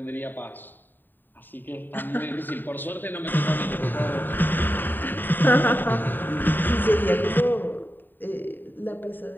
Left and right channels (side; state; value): right; late; 0.092 ms